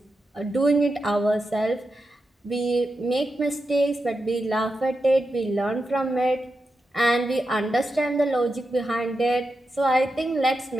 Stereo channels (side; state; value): both; normal; correlation 0.88